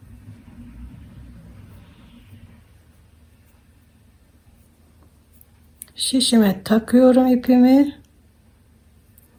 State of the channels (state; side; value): identical; both; correlation 1.00